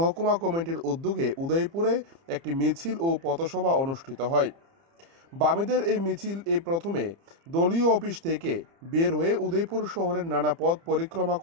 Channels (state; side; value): late; left; 30 ms